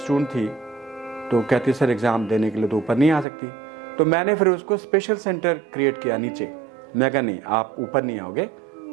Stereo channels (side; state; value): left; drops out; at 3.2 s